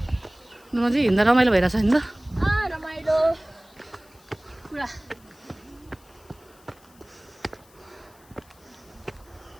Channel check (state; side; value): noise; left; hiss, 28 dB below the sound